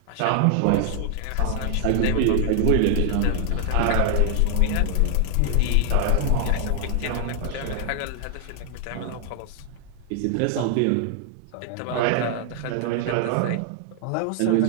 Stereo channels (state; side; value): different; both; correlation 0.00